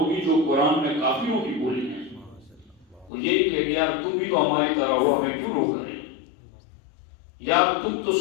جو قرآن میں کافروں کی بولی ہیں۔ وہ یہ کہ یار تم بھی تو ہماری طرح ہو، ہمیں کیوں روک رہے ہیں؟ یار تم تو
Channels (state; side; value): drops out; right; at 3.1 s